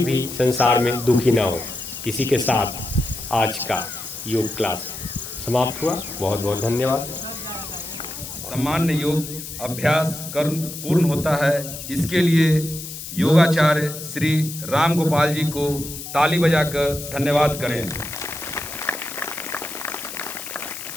भी संसार में दुखी ना हो। इसी के साथ आज का योग क्लास समाप्त हुआ। बहुत बहुत धन्यवाद। सामान्य योग अभ्यास कर्म पूर्ण होता है। इसके लिए योगाचार्य श्री राम गोपाल जी को ताली बजाकर धन्यवाद करें।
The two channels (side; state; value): left; noise; hiss, 10 dB below the sound